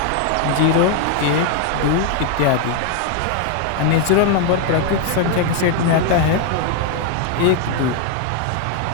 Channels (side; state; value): both; different; correlation 0.01